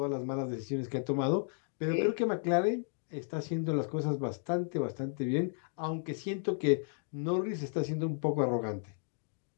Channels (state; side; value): silent; right; digital silence